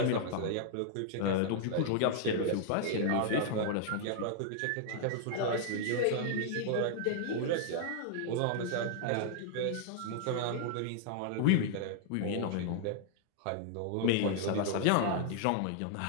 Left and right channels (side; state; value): both; different; correlation -0.01